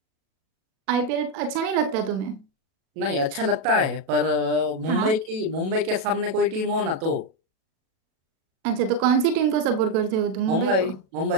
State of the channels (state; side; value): late; left; 37 ms